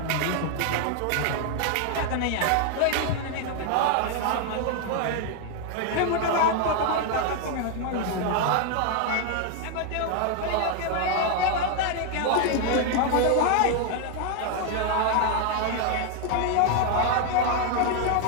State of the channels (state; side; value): different; both; correlation 0.00